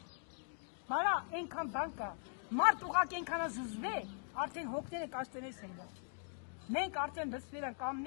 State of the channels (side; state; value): right; silent; 51 dB below the other